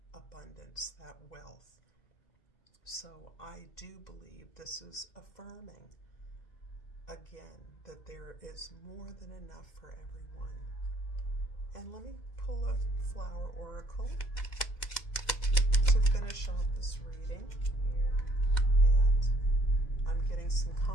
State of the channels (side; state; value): right; late; 2.0 ms